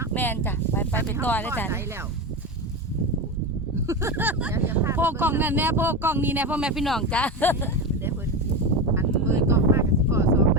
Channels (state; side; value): normal; both; correlation 0.19